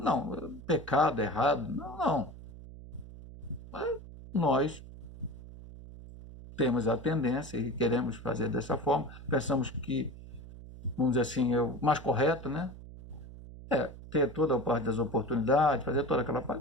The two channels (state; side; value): noise; right; hum, 15 dB below the sound